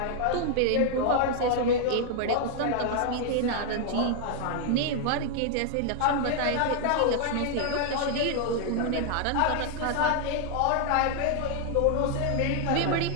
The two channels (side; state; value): both; different; correlation 0.00